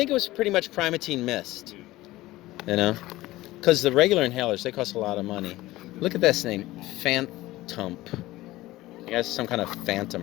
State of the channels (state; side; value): quieter; right; 17.7 dB